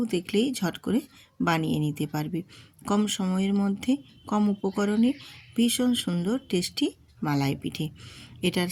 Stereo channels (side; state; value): both; identical; correlation 1.00